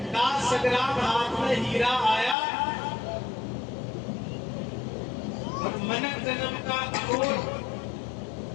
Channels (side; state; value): right; drops out; at 2.4 s